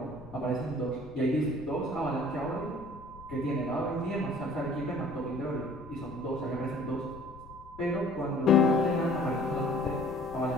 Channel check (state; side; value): noise; left; rumble, 19 dB below the sound